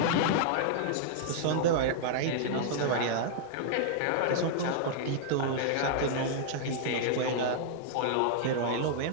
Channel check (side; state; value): both; different; correlation -0.01